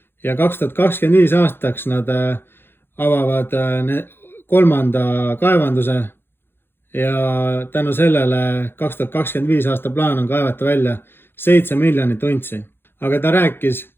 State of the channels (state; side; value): late; right; 0.10 ms